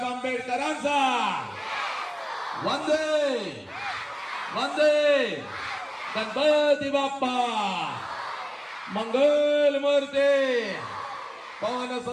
आंबेडकरांचा वंदे वंदे. गणपती बाप्पा मंगल मूर्ती, पवन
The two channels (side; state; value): both; identical; correlation 1.00